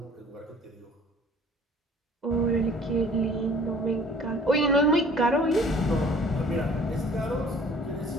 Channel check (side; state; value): both; normal; correlation 0.51